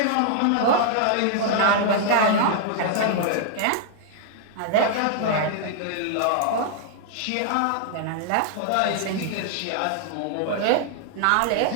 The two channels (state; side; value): different; both; correlation -0.01